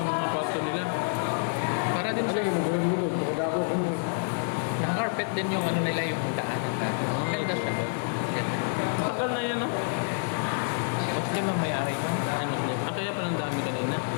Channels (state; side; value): silent; right; 57 dB below the other